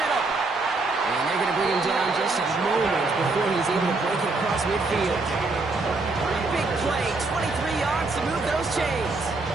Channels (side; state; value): left; quieter; 3.5 dB